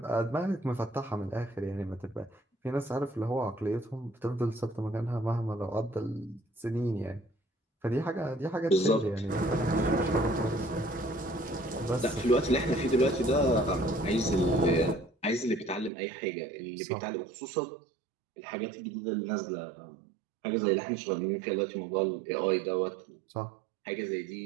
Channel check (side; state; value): left; drops out; at 15.9 s